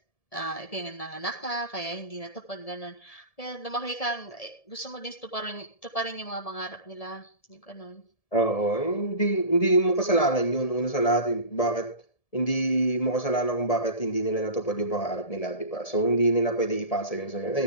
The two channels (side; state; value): right; late; 1.7 ms